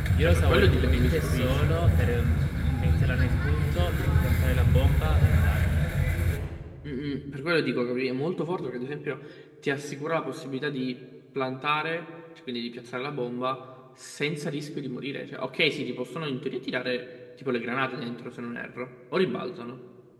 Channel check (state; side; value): identical; both; correlation 1.00